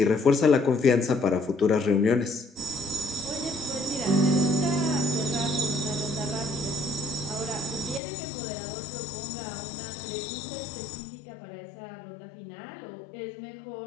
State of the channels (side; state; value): right; drops out; at 8.0 s